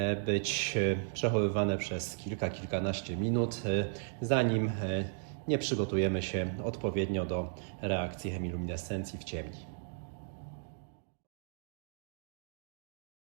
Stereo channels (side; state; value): left; silent; digital silence